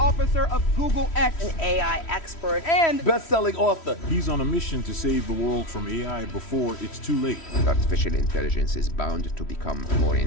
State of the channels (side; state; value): right; late; 3.1 ms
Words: of Google X, an AI expert, and best-selling author. He's on a mission to save the world from AI before it's too late. Artificial intelligence is bound to become more